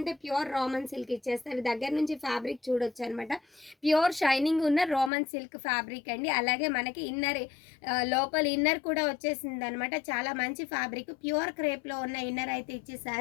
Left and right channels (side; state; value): right; drops out; at 5.1 s